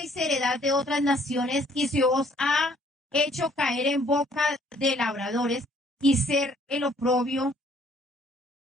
heredad de otras naciones y se os ha hecho caer en boca de labradores y ser el oprobio.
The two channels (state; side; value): normal; both; correlation 0.61